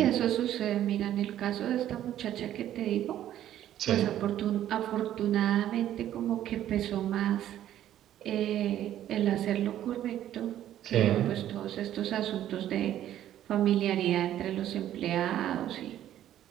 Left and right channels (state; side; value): quieter; left; 11.9 dB